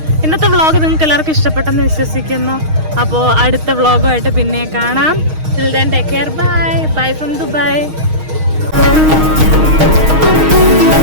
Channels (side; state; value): left; late; 6.4 ms